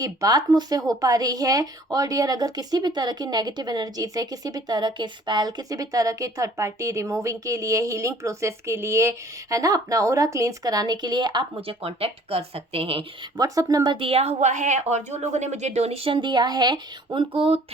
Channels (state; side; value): normal; both; correlation 0.54